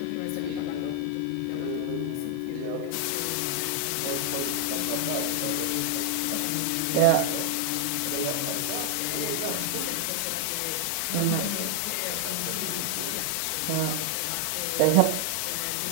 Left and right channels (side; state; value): both; different; correlation 0.00